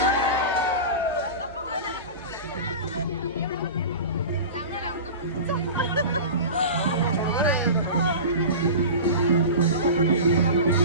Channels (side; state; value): both; inverted; correlation -0.31